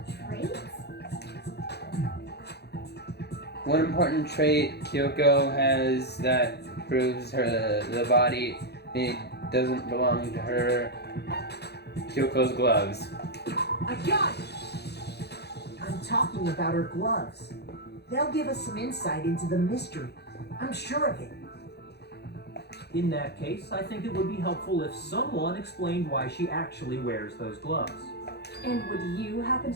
traits? One important trait Kyoko has that proves the body it doesn't belong to her. Kyoko's gloves. I got it! I'm talking about her gloves. They'll give us some insight into the mystery. I'm sure of it. In that case, I think it would be helpful if someone explained why she actually wears those gloves. And would you happen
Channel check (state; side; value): late; right; 0.48 ms